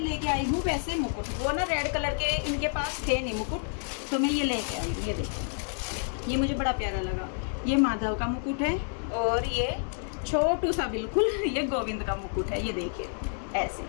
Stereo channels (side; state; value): right; silent; 58 dB below the other